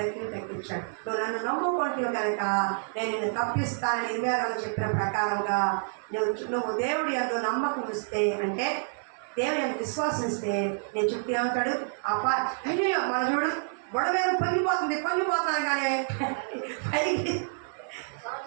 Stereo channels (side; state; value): left; silent; digital silence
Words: నువ్వు నన్ను నమ్ముకుంటే కనుక నేను నిన్ను తప్పిస్తానని ఇర్మియా చెప్పిన ప్రకారంగా నువ్వు దేవుడి యందు నమ్మకం ఇస్తే, అంటే దేవుని ఎంత విశ్వాసిస్తే నేను చుట్టూ ఏమంటాడు అయ్యో మన చూడు బొడవేరు పొంగిపోతున్నాను కానీ